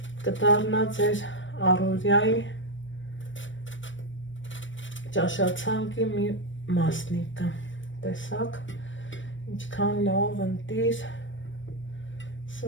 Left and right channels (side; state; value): right; late; 0.56 ms